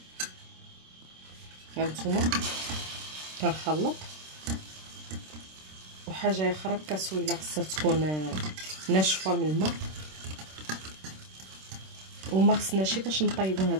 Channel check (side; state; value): left; late; 26 ms